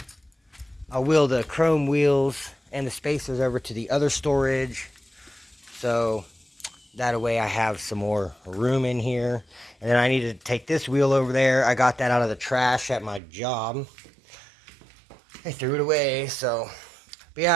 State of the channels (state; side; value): drops out; left; at 13.2 s